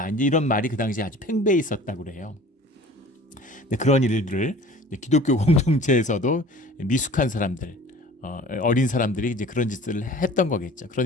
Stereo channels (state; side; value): normal; both; correlation 0.45